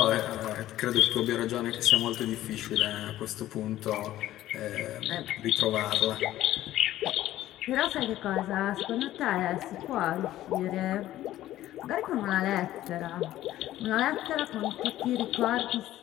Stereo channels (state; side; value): quieter; right; 14.1 dB